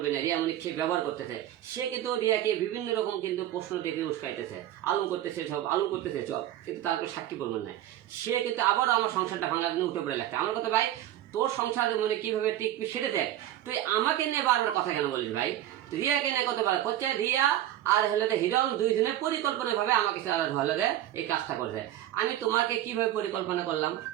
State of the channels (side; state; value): left; quieter; 12.8 dB